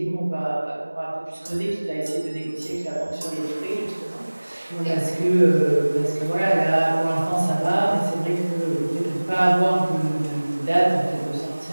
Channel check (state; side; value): inverted; both; correlation -1.00